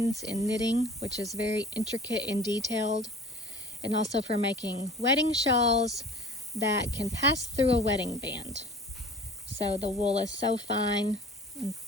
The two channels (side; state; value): both; normal; correlation 0.43